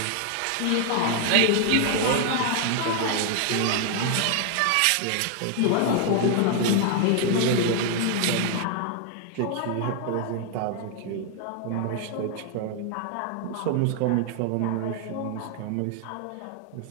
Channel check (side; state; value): both; different; correlation 0.00